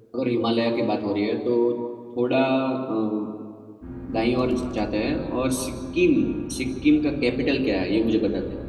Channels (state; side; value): identical; both; correlation 1.00